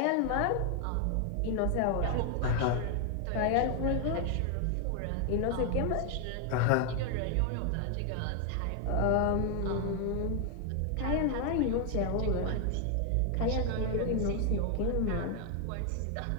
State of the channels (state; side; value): different; both; correlation 0.00